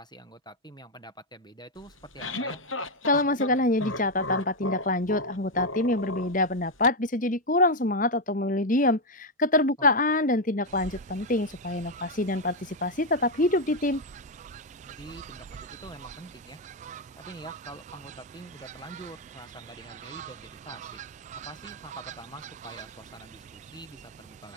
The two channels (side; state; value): both; normal; correlation 0.03